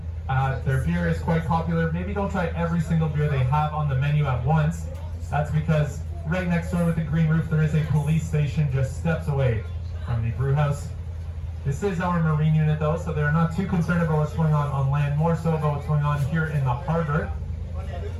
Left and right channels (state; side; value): identical; both; correlation 1.00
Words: Their beer is quite popular. Maybe don't try every single beer they have on the menu at once. That's because right next door with the green roof, there is a police station just steps away from the brew house. This is our marine unit though, so they're not too concerned about what's going on land, more so about what's going on here in the harbor.